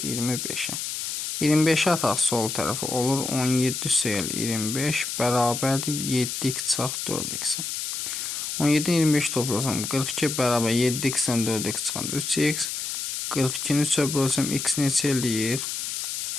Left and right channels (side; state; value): left; noise; hiss, 4 dB below the sound